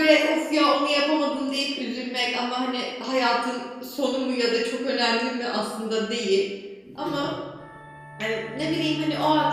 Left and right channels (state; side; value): identical; both; correlation 1.00